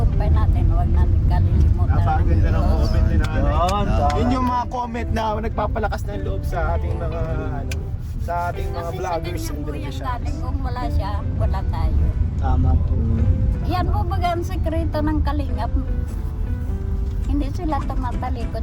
natin, huwag natin kalilimutan. Napakaganda ng comment ni nanay. Yun, Yun yung mga comment na nagpapalakas ng loob sa ating mga ano, sa ating mga Kasi vloggers sa and ganyan po yung television. galing, kung wala siya, wala tayo. Tama po. Yan po baga ang sekreto ng kalingap. Hindi sila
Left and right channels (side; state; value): both; identical; correlation 1.00